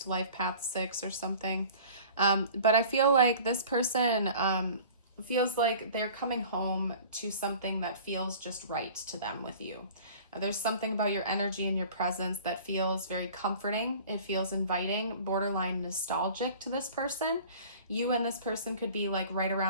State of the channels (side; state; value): both; inverted; correlation -0.45